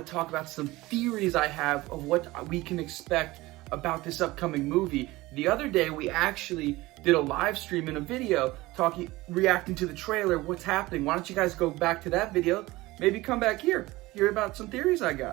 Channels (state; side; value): quieter; left; 19.6 dB